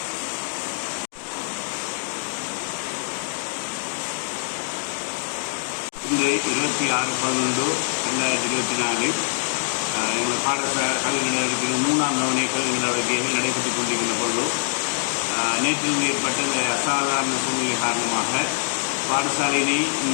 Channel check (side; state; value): right; silent; digital silence